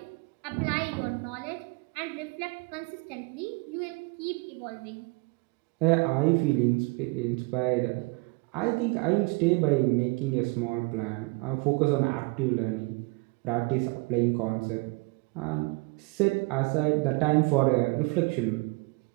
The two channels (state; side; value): quieter; left; 26.9 dB